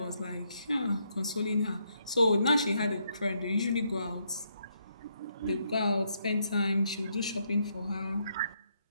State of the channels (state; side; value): inverted; both; correlation -0.76